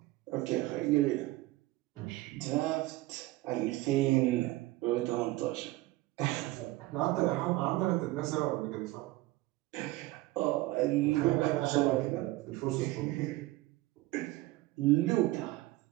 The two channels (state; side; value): quieter; left; 18.8 dB